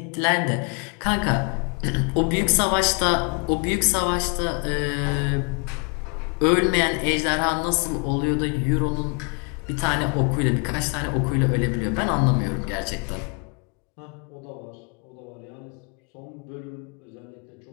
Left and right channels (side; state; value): right; quieter; 34.6 dB